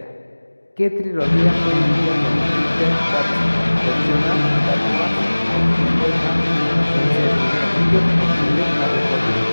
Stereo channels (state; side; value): inverted; both; correlation -1.00